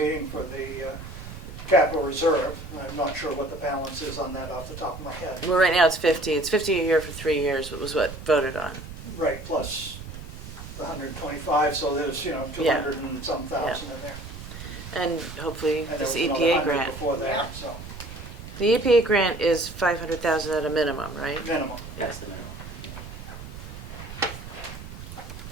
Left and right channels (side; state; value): right; noise; rumble, 12 dB below the sound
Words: for the capital reserve. I'm not sure what the balance is on that off the top of my head. Well, right now it's 50 a year for 3 years, was what voted on. Right, plus the 125, so there's, Yeah. 200 and some thousand in there. And hopefully And there this was another EPA 100 grant. before Yeah. that, so The EPA grant is 500,000 at a minimum, right? minimum. That's the minimum.